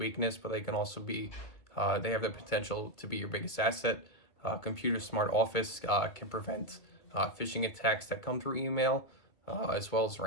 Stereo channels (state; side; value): late; right; 2.2 ms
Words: but they can also be, they have the potential to be your biggest asset. Computer Smart Office can prevent phishing attacks that come through email, as well as